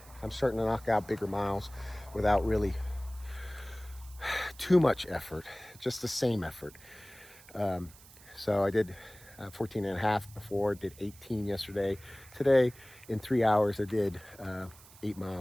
starting to knock out bigger miles without really too much effort, just the same effort. So I did 14 and a half before, did 18 yesterday. Today, in 3 hours, I did 8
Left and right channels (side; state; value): right; noise; hiss, 22 dB below the sound